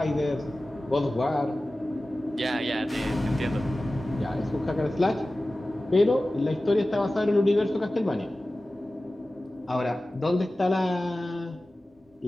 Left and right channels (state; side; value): normal; both; correlation 0.96